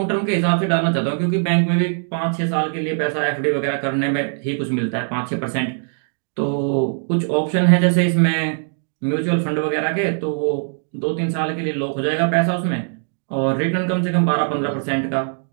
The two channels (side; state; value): left; silent; digital silence